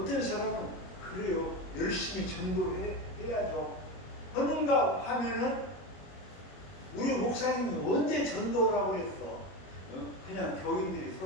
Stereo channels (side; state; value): right; late; 22 ms